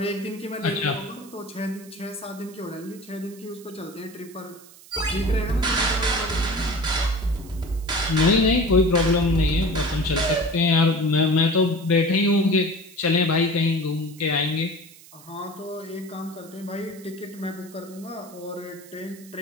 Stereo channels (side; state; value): right; noise; hiss, 22 dB below the sound